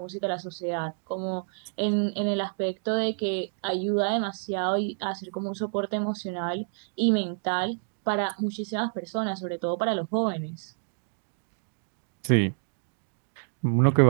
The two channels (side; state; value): left; silent; digital silence